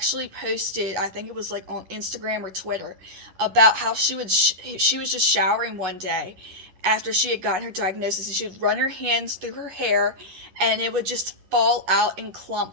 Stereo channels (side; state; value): left; late; 11 ms